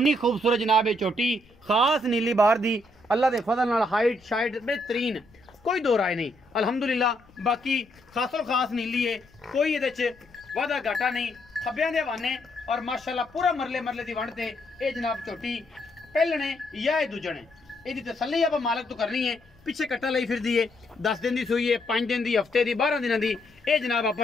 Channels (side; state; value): left; noise; rumble, 29 dB below the sound